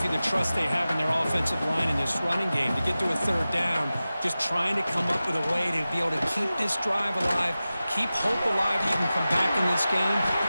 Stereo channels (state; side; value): inverted; both; correlation -0.95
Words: you the trust they have in their offensive line in this running game. To get to a third down, just trying to come up with a way to be able to keep this drive alive, keep hope alive that you can come back in this game.